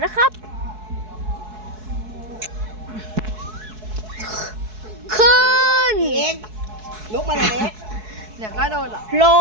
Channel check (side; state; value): left; late; 4.7 ms